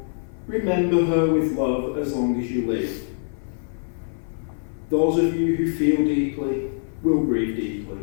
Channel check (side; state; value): right; silent; 56 dB below the other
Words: remember her with love as long as you live. Those of you who feel deeply will grieve